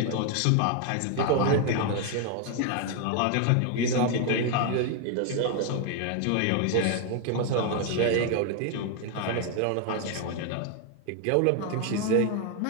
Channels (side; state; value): both; different; correlation 0.01